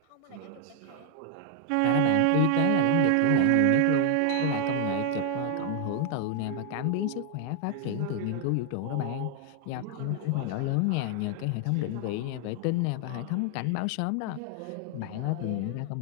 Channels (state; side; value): different; both; correlation 0.00